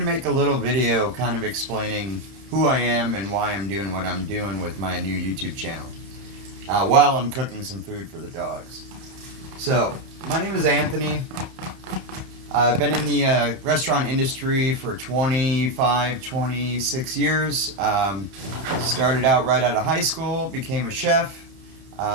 make a little video kind of explaining who I am and why I'm doing what I'm doing with my new YouTube channel while I'm cooking some food for the dogs. So, my name is Anthony. I've been in the restaurant industry for 25, 26 years. Started out right out of high school, became a chef.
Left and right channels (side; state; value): left; late; 31 ms